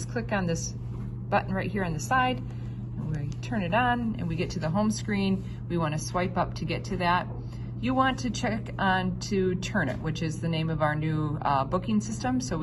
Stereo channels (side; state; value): both; identical; correlation 1.00